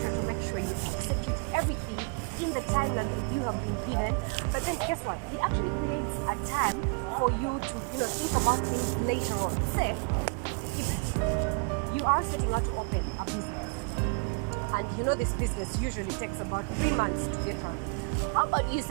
to make sure you execute everything in the timeline that you have been given. But then guess what? It actually creates a time for you to, think about things later on. Say, if you are setting out to open a business, and this business usually takes about 3 months to get running. How about you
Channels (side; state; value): left; quieter; 34.4 dB